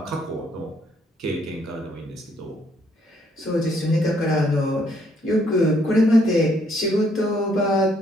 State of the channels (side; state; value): both; normal; correlation 0.69